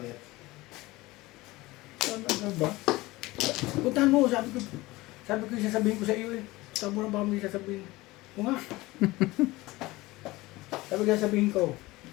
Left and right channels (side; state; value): right; quieter; 20.1 dB